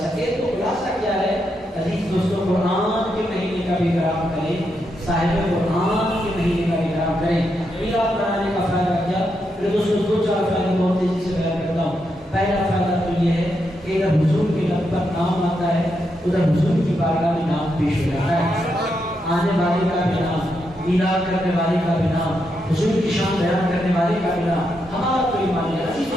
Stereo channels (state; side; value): normal; both; correlation 0.82